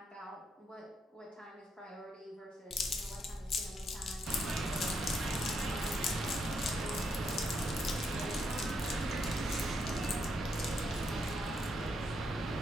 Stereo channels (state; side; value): normal; both; correlation 0.77